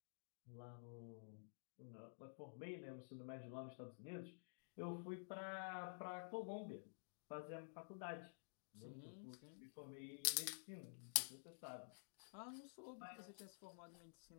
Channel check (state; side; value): silent; right; digital silence